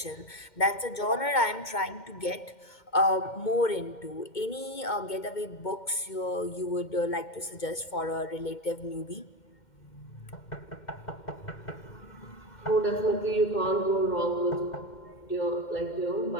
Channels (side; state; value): right; late; 2.2 ms